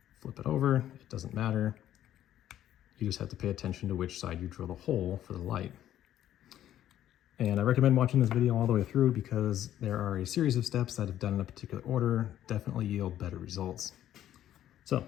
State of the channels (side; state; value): right; quieter; 11.8 dB